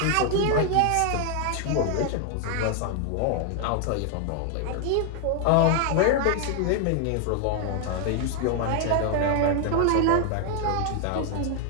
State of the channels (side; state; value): both; different; correlation 0.00